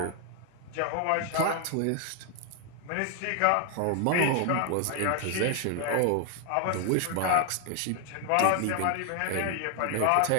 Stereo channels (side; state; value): both; different; correlation 0.00